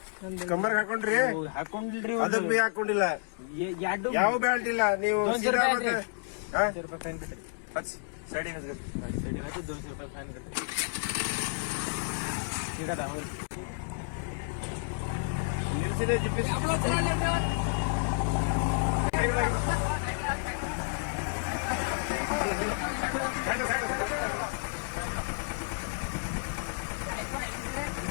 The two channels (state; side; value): silent; right; digital silence